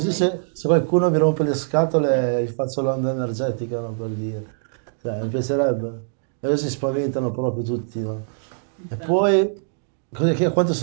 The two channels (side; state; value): left; silent; digital silence